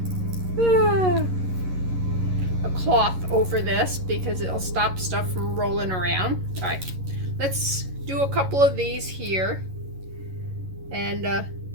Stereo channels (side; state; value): left; late; 11 ms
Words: cloth over this, because it'll stop stuff from rolling around. All right. Let's do a couple of these here. And